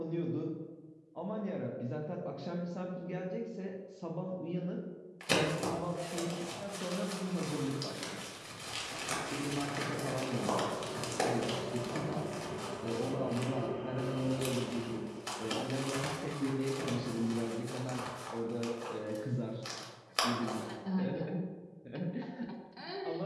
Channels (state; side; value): identical; both; correlation 1.00